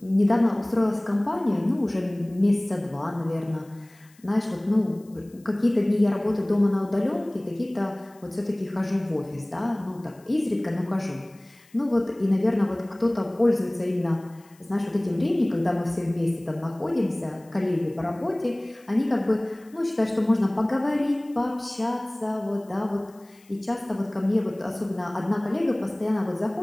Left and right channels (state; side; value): noise; left; hiss, 29 dB below the sound